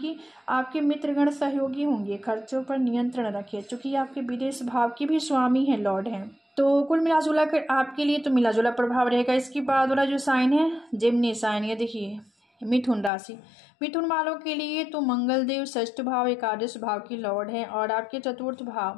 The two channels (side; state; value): right; drops out; at 13.1 s